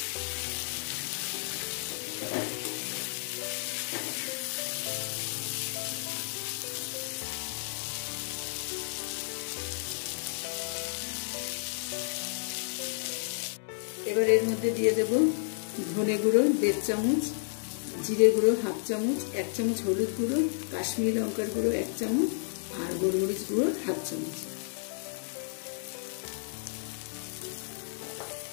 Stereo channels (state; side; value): silent; right; digital silence